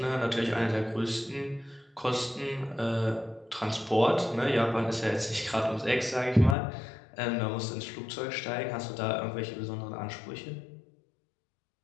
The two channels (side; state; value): right; drops out; at 6.6 s